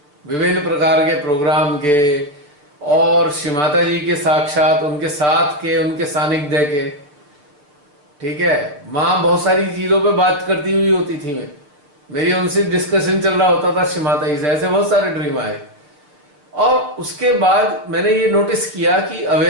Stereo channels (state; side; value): late; left; 6.8 ms